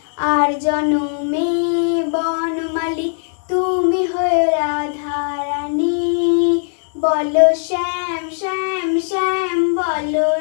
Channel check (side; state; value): right; silent; digital silence